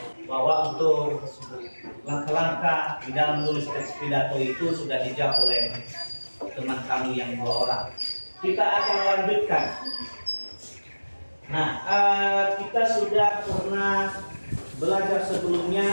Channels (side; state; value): both; inverted; correlation -1.00